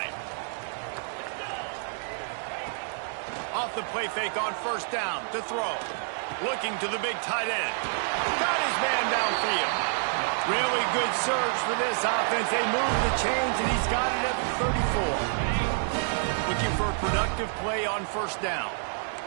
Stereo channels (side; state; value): left; silent; 59 dB below the other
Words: Off the play fake on first down to throw. Looking to the big tight end. Got his man downfield. Really good surge for this offense. They move the chains and he's got it at the 34. Looking for a productive play on first down.